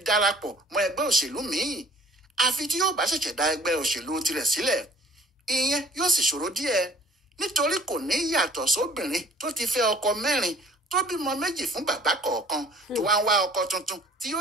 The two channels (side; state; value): both; normal; correlation 0.53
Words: darapọ̀ mọ́ ẹgbẹ́ òṣèlú míì. Àfi tí yóò bá ṣẹ̀ṣẹ̀ dá ẹgbẹ́ òṣèlú tirẹ̀ sílẹ̀. Ìyẹn yóò sì ṣòro díẹ̀, nítorí kò ní yàtọ̀ sóbìnrin tó ti fẹ́ ọkọ 4 tó bímọ 2 fún bàbá kọ̀ọ̀kan tó wá ń wá ọkọ tuntun tí